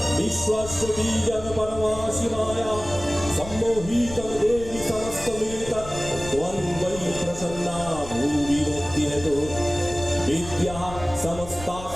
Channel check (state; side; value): noise; left; rumble, 13 dB below the sound